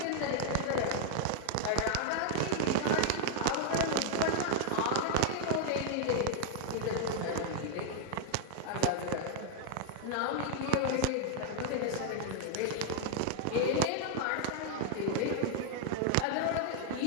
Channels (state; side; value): different; both; correlation -0.01